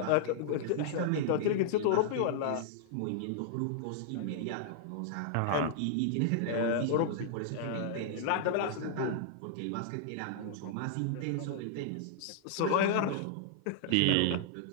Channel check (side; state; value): both; different; correlation -0.01